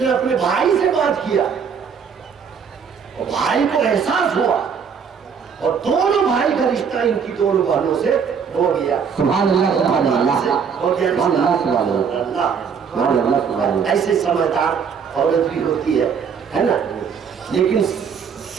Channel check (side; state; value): left; quieter; 6.6 dB